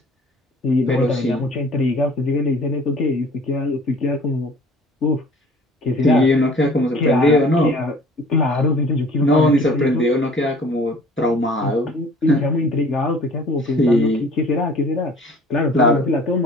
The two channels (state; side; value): normal; both; correlation 0.50